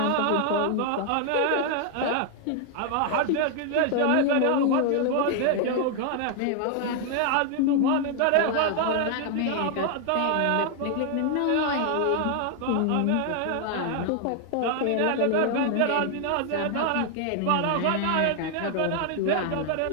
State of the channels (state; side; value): different; both; correlation 0.00